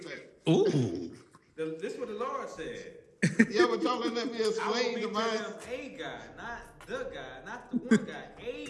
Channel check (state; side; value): identical; both; correlation 1.00